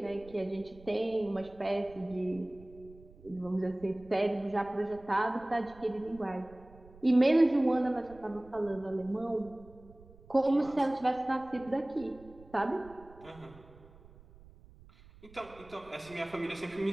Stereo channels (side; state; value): right; noise; rumble, 22 dB below the sound